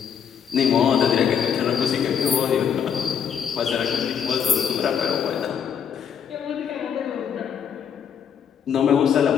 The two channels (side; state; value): right; quieter; 7.8 dB